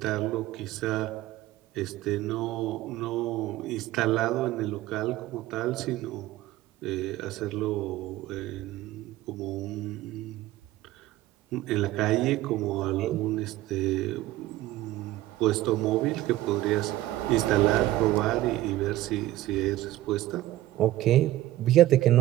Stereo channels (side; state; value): left; quieter; 15.5 dB